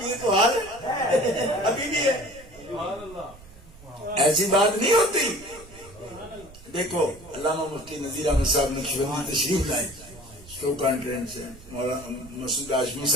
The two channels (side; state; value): right; noise; rumble, 21 dB below the sound